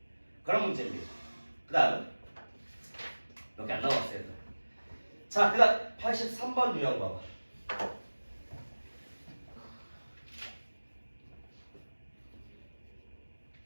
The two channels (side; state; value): both; inverted; correlation -1.00